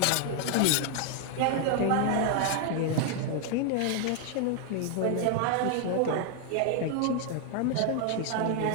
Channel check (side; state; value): both; different; correlation 0.00